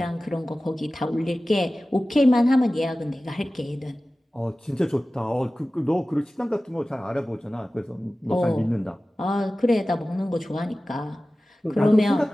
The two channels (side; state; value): both; normal; correlation 0.96